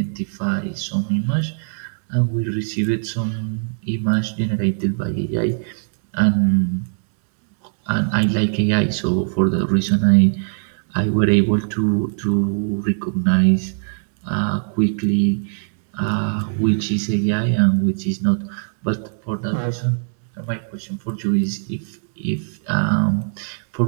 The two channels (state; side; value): silent; left; digital silence